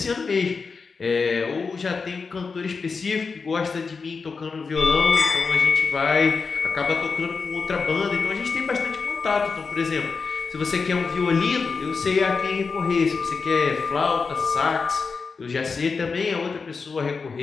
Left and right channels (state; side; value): quieter; right; 4.9 dB